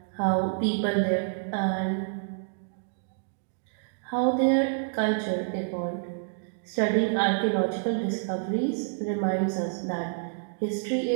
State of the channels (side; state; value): left; silent; digital silence